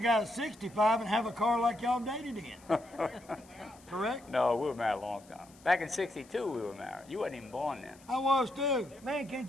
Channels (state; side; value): noise; left; hiss, 26 dB below the sound